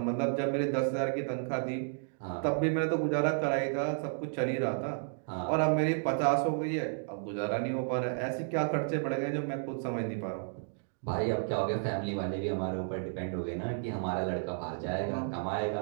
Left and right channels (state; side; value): silent; left; digital silence